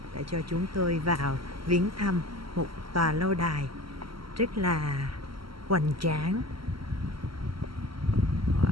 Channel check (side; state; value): left; late; 0.74 ms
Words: đã cho chúng tôi vào viếng thăm một tòa lâu đài rất là hoành tráng.